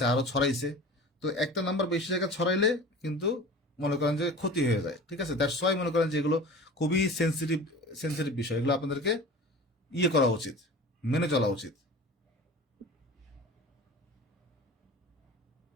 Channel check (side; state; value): both; normal; correlation 0.37